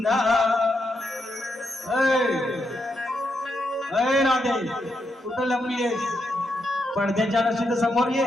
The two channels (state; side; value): normal; both; correlation 0.82